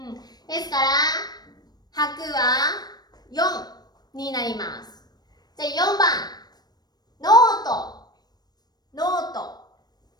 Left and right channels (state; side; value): late; right; 0.19 ms